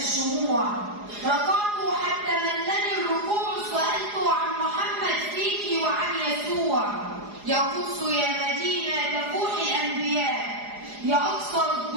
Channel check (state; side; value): late; left; 4.8 ms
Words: ركعت حتى ملني الركوع، سألت عن محمد فيك وعن يسوع. يا قدس يا مدينة تفوح الأنبياء، يا أقصر